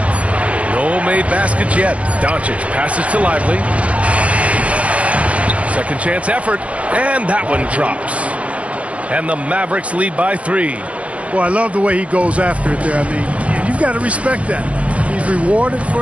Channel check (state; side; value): late; left; 0.064 ms